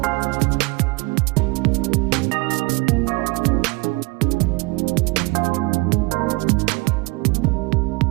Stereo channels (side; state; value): left; quieter; 25.1 dB